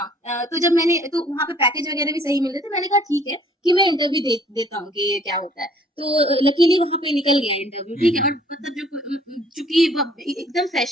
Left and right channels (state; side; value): normal; both; correlation 0.58